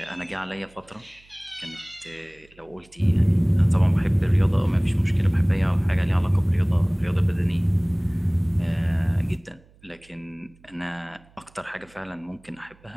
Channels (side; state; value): right; noise; hum, 29 dB below the sound